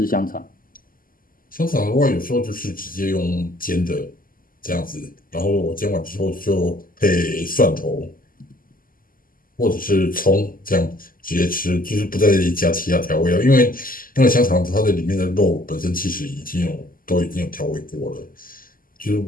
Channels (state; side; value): late; right; 0.41 ms